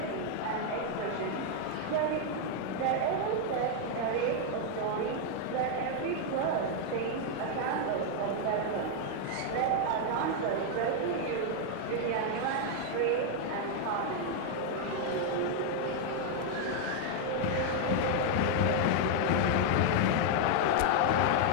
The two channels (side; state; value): both; different; correlation 0.00